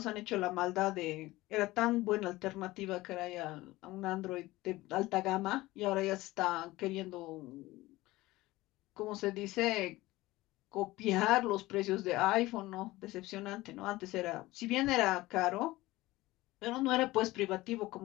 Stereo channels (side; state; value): right; quieter; 18.8 dB